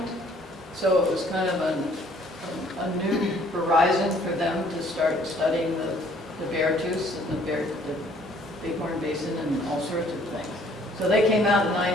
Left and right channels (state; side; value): normal; both; correlation 0.60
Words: so it was kind of a new horizon for them to start studying the Beartooth and the Bighorn Basin and all sorts of things. So they came out in